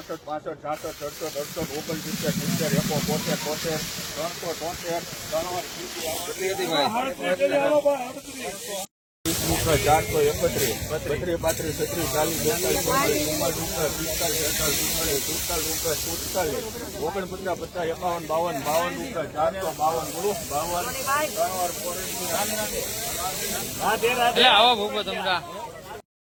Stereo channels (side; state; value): both; identical; correlation 1.00